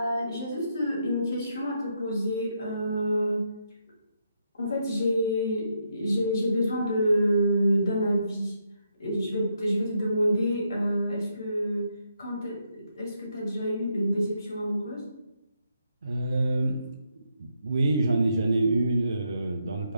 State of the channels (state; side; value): inverted; both; correlation -0.79